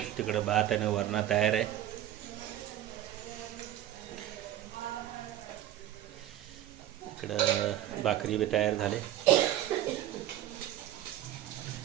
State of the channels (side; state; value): left; quieter; 12.6 dB